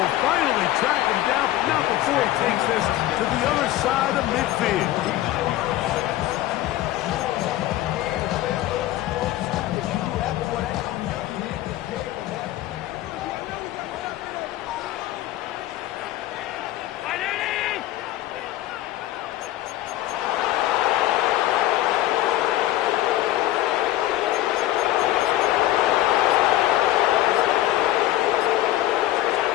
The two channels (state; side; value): quieter; right; 14.8 dB